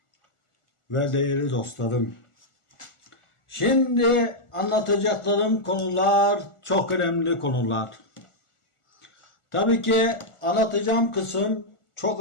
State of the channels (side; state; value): right; late; 1.4 ms